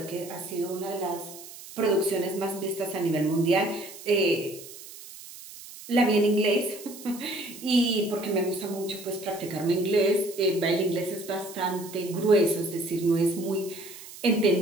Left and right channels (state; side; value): noise; right; hiss, 16 dB below the sound